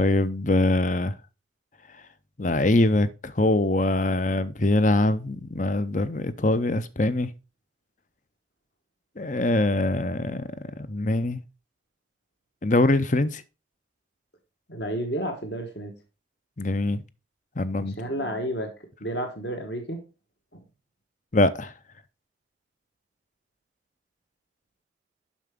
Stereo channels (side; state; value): both; normal; correlation 0.58